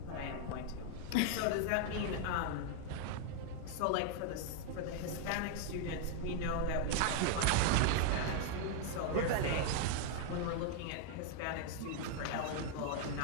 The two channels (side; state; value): both; different; correlation 0.00